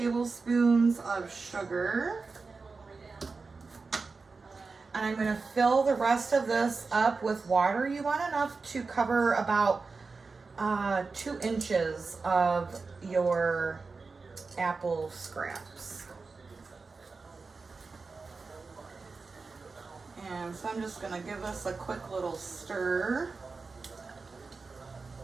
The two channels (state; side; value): quieter; left; 4.3 dB